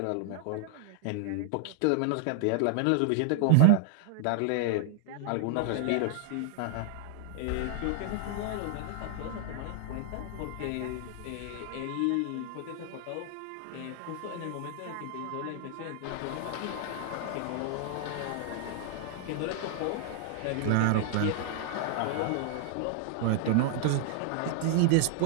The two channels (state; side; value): different; both; correlation 0.00